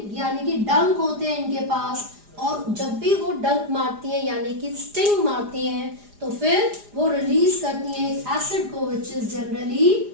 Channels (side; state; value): left; late; 4.9 ms